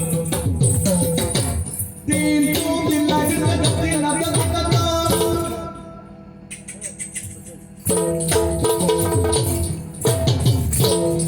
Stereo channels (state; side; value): identical; both; correlation 1.00